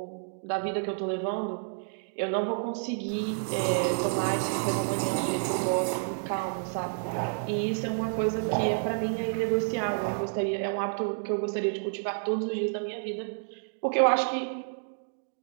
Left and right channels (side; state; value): left; silent; digital silence